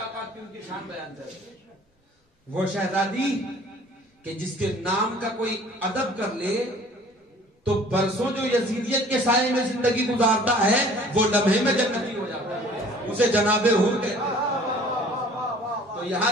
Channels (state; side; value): normal; both; correlation 0.51